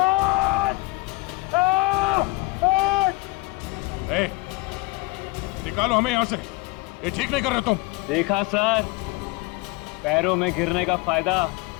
ए, निकालो हमें यहाँ से, ये ठीक नहीं कर रहे तुम। देखा सर, पैरों में गिरने का फायदा,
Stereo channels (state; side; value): quieter; right; 22.6 dB